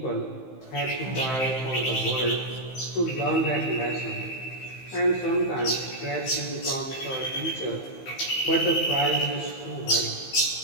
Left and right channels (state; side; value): late; right; 15 ms